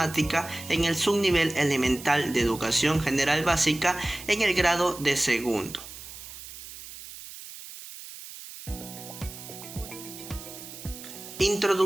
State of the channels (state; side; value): noise; right; hiss, 14 dB below the sound